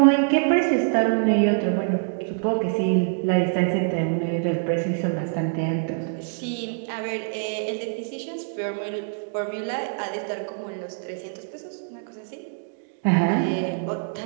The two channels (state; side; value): silent; left; digital silence